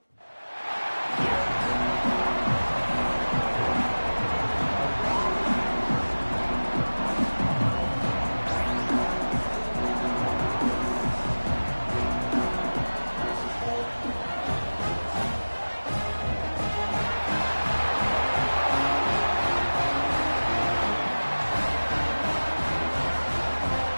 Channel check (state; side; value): inverted; both; correlation -1.00